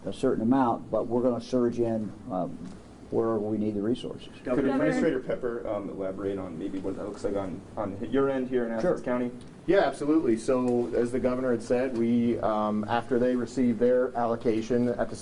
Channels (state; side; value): identical; both; correlation 1.00